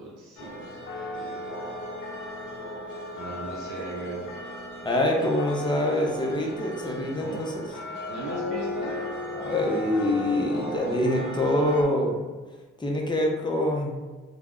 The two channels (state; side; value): normal; both; correlation 0.47